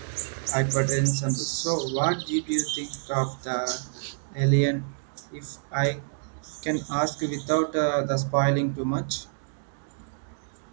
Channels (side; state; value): left; silent; digital silence